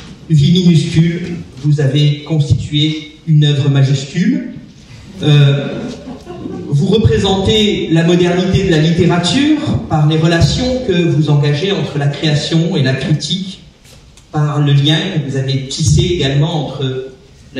vies minuscules, vous avez constitué une œuvre majuscule. Vous représentez la modernité de la littérature par les relations que vous engagez entre la création et la critique, par le lien que vous avez tissé également entre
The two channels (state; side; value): identical; both; correlation 1.00